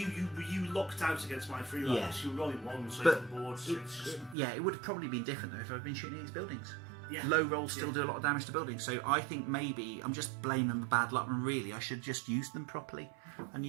locked out against my free riders. Yeah. You were rolling ones over the board. So it would have probably been different though if I'd been shooting these buildings. Yeah. Low rolls still do a lot of damage to buildings, so I think maybe I'm just blaming the bad luck, and really I should just use them properly and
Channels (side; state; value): left; drops out; at 4.4 s